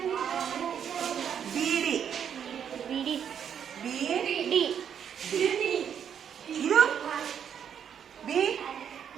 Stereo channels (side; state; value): left; quieter; 8.4 dB